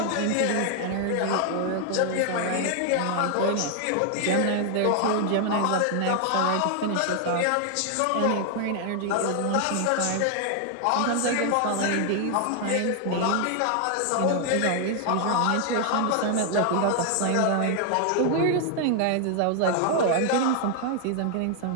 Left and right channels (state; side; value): different; both; correlation 0.00